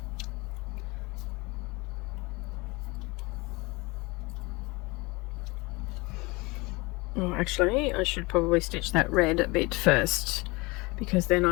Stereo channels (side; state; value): right; quieter; 24.8 dB